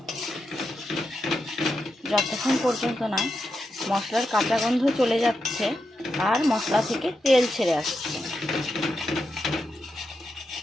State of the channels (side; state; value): both; normal; correlation 0.86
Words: যতক্ষণ পর্যন্ত না মশলার কাঁচা গন্ধ চলে যাচ্ছে আর মশলা থেকে তেল ছেড়ে আসছে।